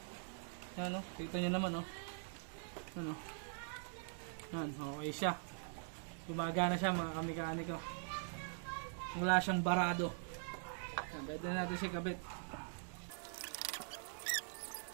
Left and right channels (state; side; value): silent; left; digital silence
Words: Yan o, kita nyo naman o. Ano? Yan, okay siya. Gumagana siya mga kamekaniko. Wala siyang barado. Pwede na natin siya kabit.